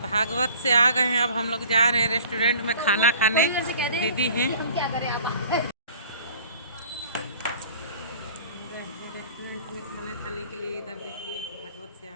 भागवत से आ गए हैं, अब हम लोग जा रहे हैं रेस्टोरेंट में खाना खाने। दीदी हैं खाना खाने के लिए, इधर देखिए भागवत से आ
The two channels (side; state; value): both; inverted; correlation -0.49